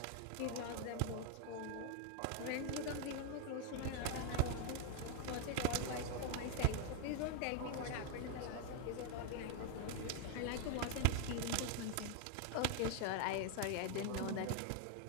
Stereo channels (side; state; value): both; different; correlation 0.01